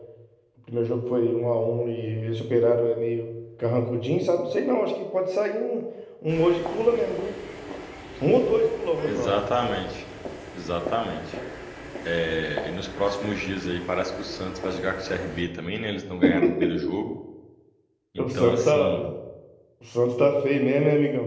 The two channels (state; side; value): identical; both; correlation 1.00